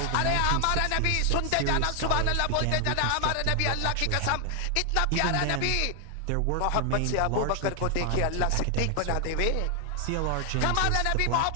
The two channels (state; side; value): different; both; correlation 0.00